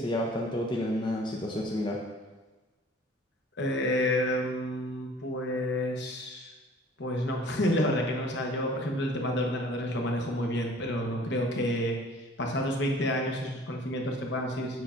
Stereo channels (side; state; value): both; normal; correlation 0.50